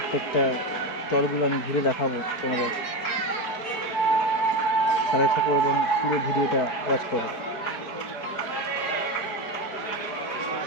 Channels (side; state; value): right; late; 4.6 ms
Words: স্টলগুলো আমি ঘুরে দেখাবো তোমাদের। সাথে থাকো এবং পুরো ভিডিওটা ওয়াচ করো।